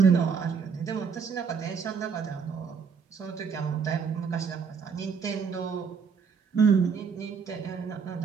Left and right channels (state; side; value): quieter; left; 6.0 dB